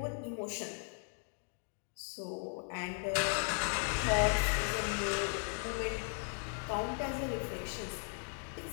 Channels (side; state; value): right; silent; 53 dB below the other